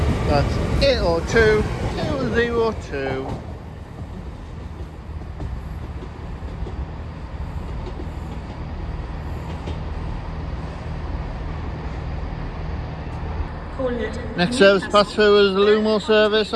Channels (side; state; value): both; identical; correlation 1.00